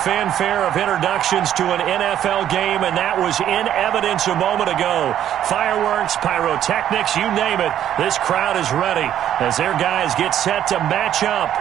of introductions to an NFL game, and that was in evidence a moment ago. Fireworks, pyrotechnics, you name it. This crowd is ready as their guys get set to match up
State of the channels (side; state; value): left; quieter; 10.8 dB